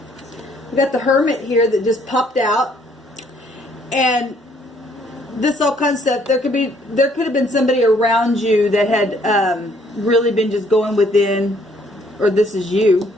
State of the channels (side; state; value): both; normal; correlation 0.64